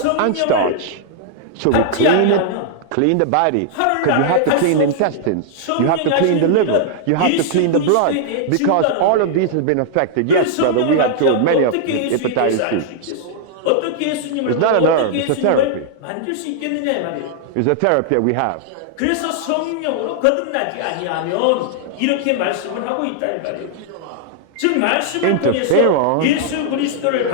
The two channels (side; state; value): both; different; correlation -0.01